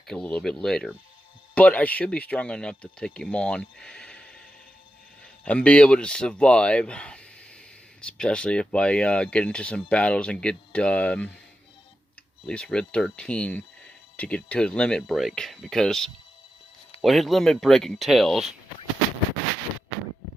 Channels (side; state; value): both; normal; correlation 0.89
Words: a little bit later. But I should be strong enough to take him on and be able to survive. Especially if I get into some battles and get at least Red 13 to get to his limit break. Because what his limit break entails